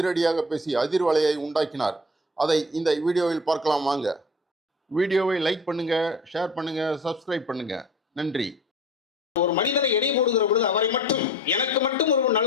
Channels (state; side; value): normal; both; correlation 0.41